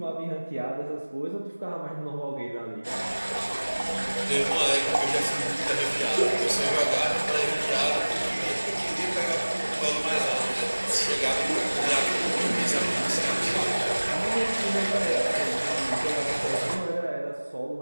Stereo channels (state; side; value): inverted; both; correlation -1.00